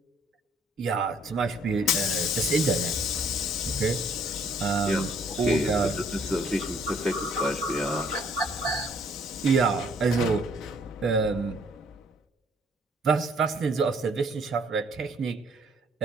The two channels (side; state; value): both; normal; correlation 0.62